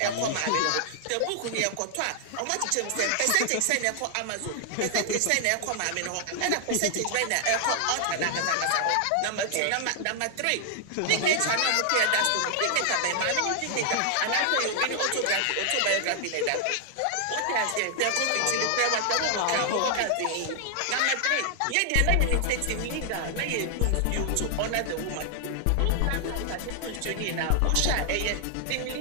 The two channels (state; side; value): different; both; correlation 0.00